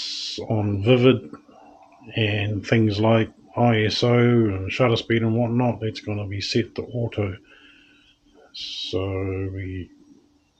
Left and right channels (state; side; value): identical; both; correlation 1.00